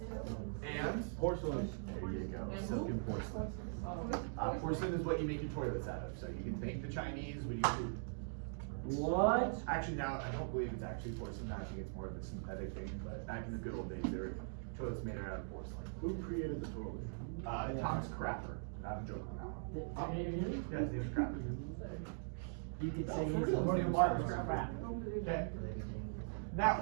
And? Porcelain. There you go, silken porcelain. Porcelain is what you make your toilets out of, so you can thank the Chinese when you do. What? Actually, now, I don't believe it's actually porcelain, I think it's more of a synthetic thing, but back in the good old days, there were toilets made out of porcelain. Who created the toilet? Thomas Crapper. Not a joke on that one. Really? Yeah, his name is Crapper. You could say His he's name is Marcus Crapper. Crap. Okay.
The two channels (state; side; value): silent; left; digital silence